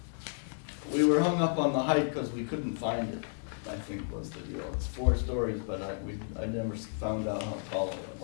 We were hung up on the height because we couldn't find it. I think was the deal. It's 4 stories, but I never found out how tall it was.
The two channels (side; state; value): right; silent; 56 dB below the other